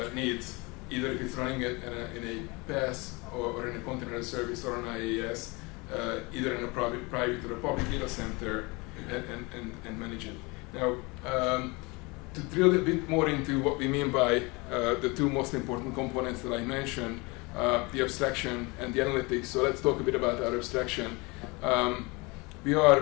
needs, either if it's running it in a PaaS or in a container service or an IaaS, either in a private or a public data center, and manage it. Now, to drill a bit more into what we mean by the two most important components that I mentioned, the abstraction and the analytics. So let's talk a bit about our abstraction. We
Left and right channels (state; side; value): quieter; right; 26.5 dB